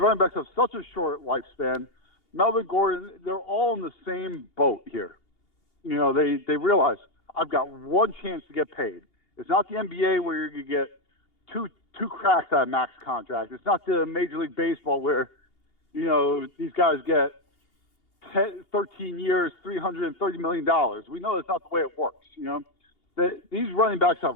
backs have such a short lifespan. Melvin Gordon, they're all in the same boat here. You know, they realize, I've got one chance to get paid. It's not the NBA where you get two cracks at a max contract. It's not the Major League Baseball where, you know, these guys get 13 years, $330 million. We know that's not the way it works, you know? These running backs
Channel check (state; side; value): late; right; 2.8 ms